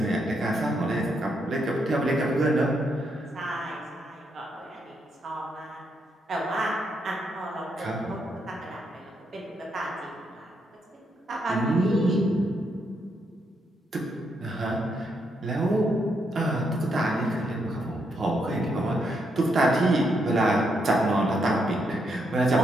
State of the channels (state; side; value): normal; both; correlation 0.78